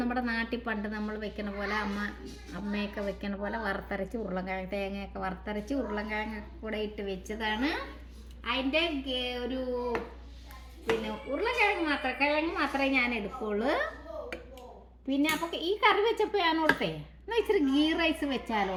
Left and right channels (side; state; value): both; identical; correlation 1.00